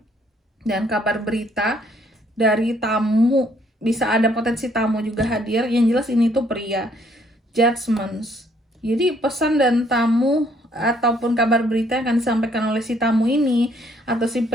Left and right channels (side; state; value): both; normal; correlation 0.66